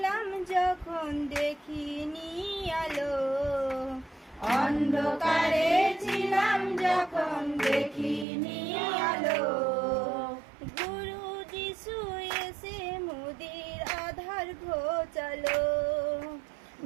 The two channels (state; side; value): drops out; left; at 8.2 s